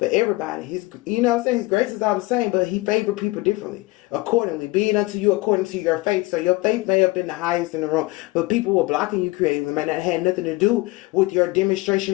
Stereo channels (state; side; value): quieter; right; 22.1 dB